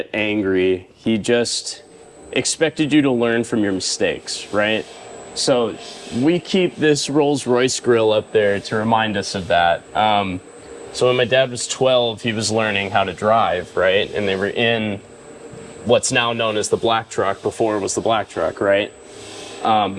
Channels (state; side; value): identical; both; correlation 1.00